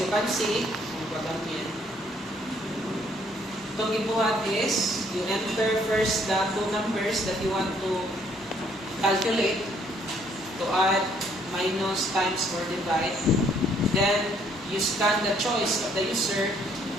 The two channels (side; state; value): both; normal; correlation 0.65